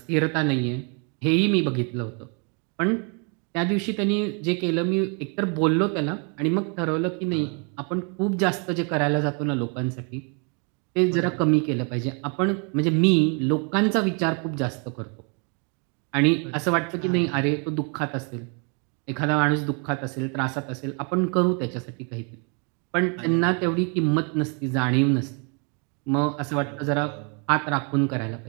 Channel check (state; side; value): quieter; left; 36.5 dB